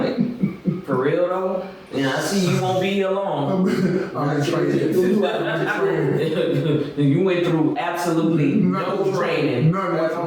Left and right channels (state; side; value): identical; both; correlation 1.00